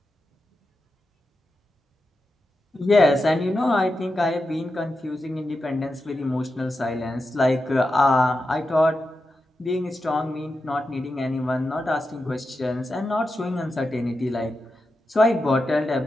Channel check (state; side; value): normal; both; correlation 0.89